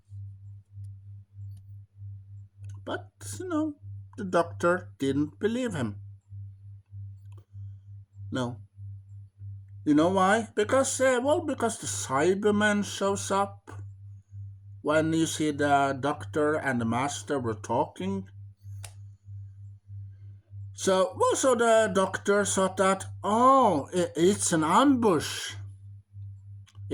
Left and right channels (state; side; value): identical; both; correlation 1.00